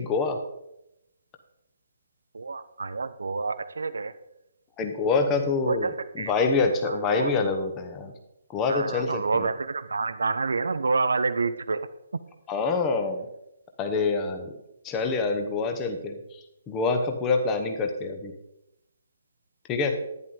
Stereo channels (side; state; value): both; inverted; correlation -0.45